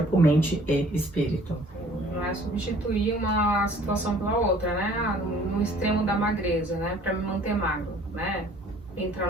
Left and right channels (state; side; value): normal; both; correlation 0.54